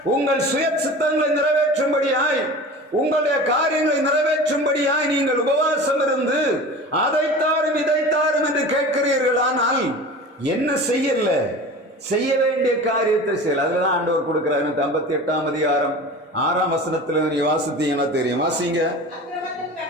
உங்கள் சுய சித்தங்களை நிறைவேற்றும்படியாய், உங்களுடைய காரியங்களை நிறைவேற்றும்படியாய் நீங்கள் உபவாசம் இருந்து அதைத்தாரும் இதைத்தாரும் என்று கேட்கிறீர்கள். ஆனால் என்ன செய்யல? செய்ய வேண்டிய காரியத்தை செய்யல. அதுலதான் ஆண்டவர் கொடுக்கிறார். 58ஆம் அதிகாரம் 6ஆம் வசனத்துல நீ வாசித்தீங்கன்னா தெரியும். வாசிங்க.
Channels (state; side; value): normal; both; correlation 0.36